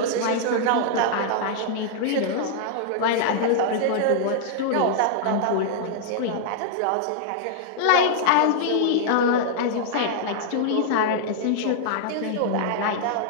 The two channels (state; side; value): different; both; correlation -0.01